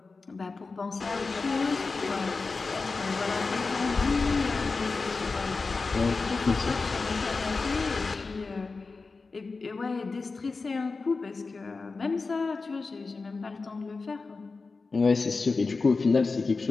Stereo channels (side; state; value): right; quieter; 4.1 dB